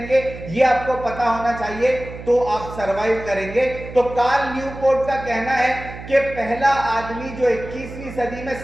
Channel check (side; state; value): right; noise; hum, 12 dB below the sound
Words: यह आपको पता होना चाहिए, तो आप सरवाइव करेंगे। तो कार्ल न्यूपोर्ट का कहना है कि पहला आदमी जो 21वीं सदी में